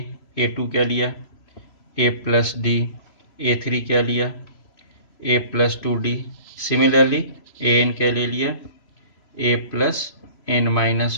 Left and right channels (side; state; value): right; late; 3.0 ms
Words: A2 क्या लिया A प्लस डी, A3 क्या लिया A plus 2D, similarly AN क्या ले लिया A plus N minus